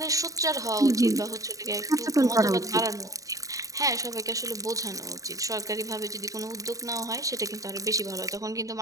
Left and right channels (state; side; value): late; left; 0.16 ms